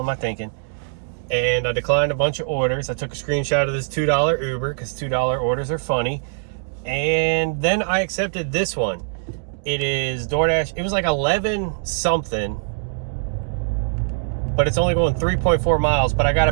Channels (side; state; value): left; silent; digital silence